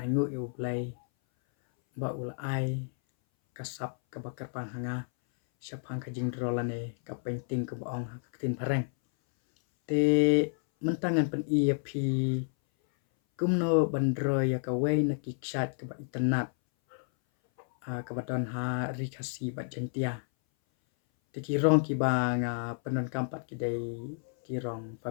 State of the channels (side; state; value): right; silent; 57 dB below the other